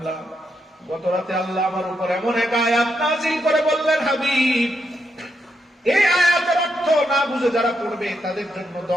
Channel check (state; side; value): normal; both; correlation 0.81